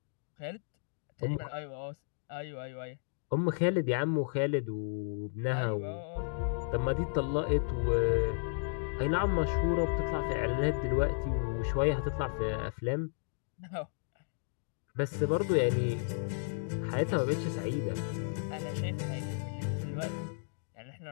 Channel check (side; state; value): right; silent; digital silence